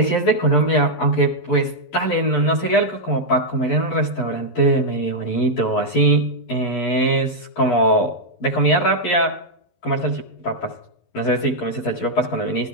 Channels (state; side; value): late; right; 11 ms